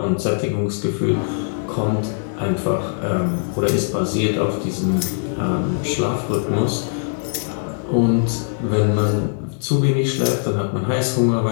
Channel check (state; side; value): silent; right; 65 dB below the other